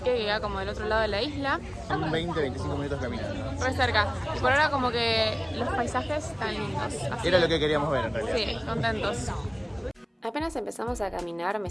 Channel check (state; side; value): identical; both; correlation 1.00